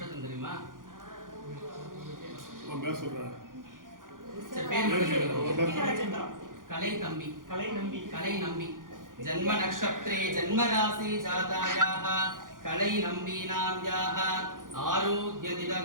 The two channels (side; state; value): left; late; 0.89 ms